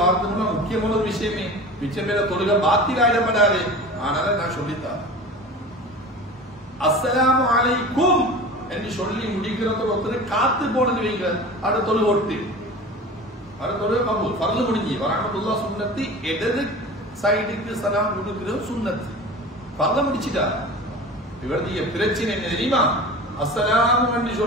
முக்கியமான ஒரு விஷயமே, மிச்சம் பேர தொழுகை பாத்திராயிடப்படாது. ஆனால நான் சொல்லித்தான் அஸ்ஸலாமு அலைக்கும் என்று சொல்லி முடிக்கிறத ஒருத்தர் காத்து போனது வைங்க, அது தொழுகை ஒட்டு ஃபர்து முடிஞ்சு, வரஹ்மத்துல்லாஹ் சுன்னத்து. இடது சைடுக்கு சலாம் கொடுக்கிறது சுன்னத்து. ஃபர்து முடிச்சிட்டா. இவருடைய பிரச்சனை என்ன தெரியுமா? அஸ்ஸலாமு என்று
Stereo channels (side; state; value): both; normal; correlation 0.35